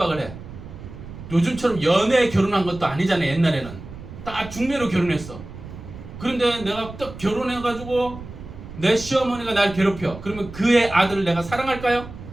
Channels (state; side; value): noise; right; rumble, 14 dB below the sound